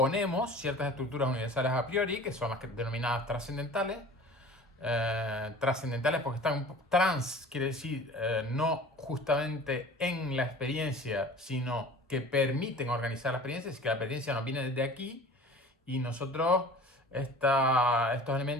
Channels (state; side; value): normal; both; correlation 0.43